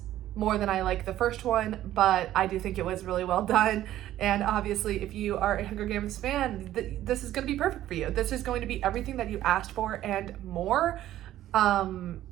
more than I like the first one, but I do think it was really well done. And obviously, if you are a Hunger Games fan, this is going to be perfect for you. This is going to be everything that you asked for and more. I'm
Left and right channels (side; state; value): left; quieter; 13.3 dB